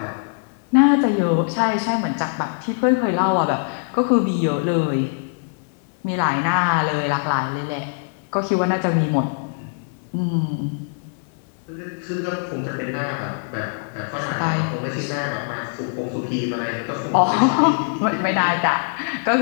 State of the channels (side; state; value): right; silent; digital silence